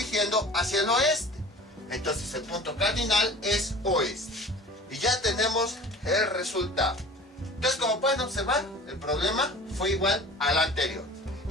hacia el oeste. Entonces el punto cardinal es oeste. Y ya tenemos el resultado. Entonces, como pueden observar, el problema fue igual al anterior.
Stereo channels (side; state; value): both; normal; correlation 0.42